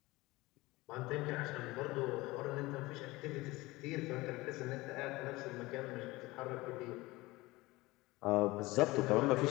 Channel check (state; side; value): quieter; right; 20.8 dB